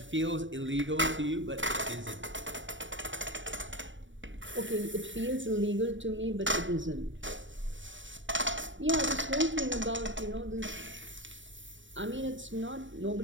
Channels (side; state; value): left; late; 0.55 ms